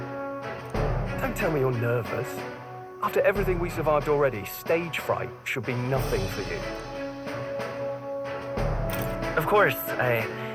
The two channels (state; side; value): identical; both; correlation 1.00